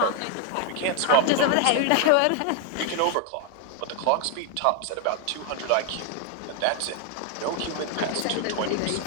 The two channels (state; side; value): different; both; correlation 0.01